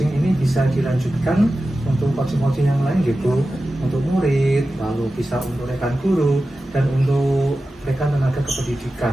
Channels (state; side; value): normal; both; correlation 0.94